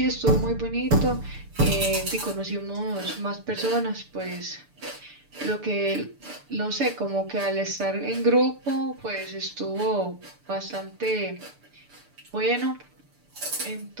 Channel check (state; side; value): late; left; 6.8 ms